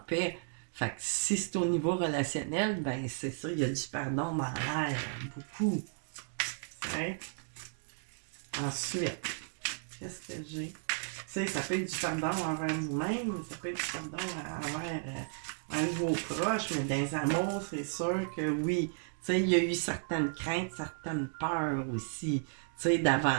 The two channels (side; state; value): left; silent; digital silence